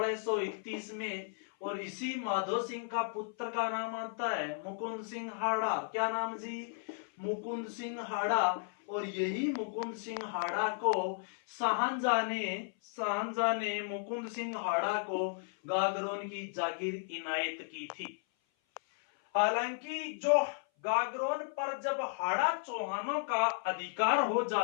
में। और इसी माधो सिंह का पुत्र का नाम आता है मुकुंद सिंह हाड़ा। क्या नाम जी? मुकुंद सिंह हाड़ा। और यही मुकुंद सिंह हाड़ा को शाहजहां ने मुकुंद सिंह हाड़ा को गागरोन की जागीर इनायत की थी। हालांकि जो गागरोन पर जब हाड़ा चौहानों का अधिकार हो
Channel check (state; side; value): silent; right; 55 dB below the other